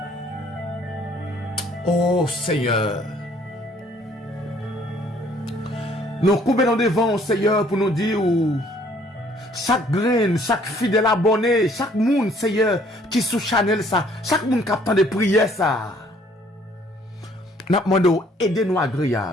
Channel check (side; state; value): both; normal; correlation 0.60